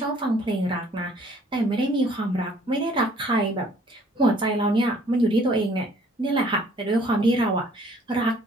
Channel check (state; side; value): normal; both; correlation 0.58